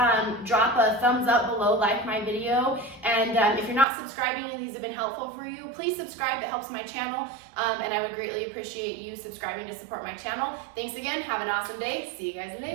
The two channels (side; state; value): left; drops out; at 3.9 s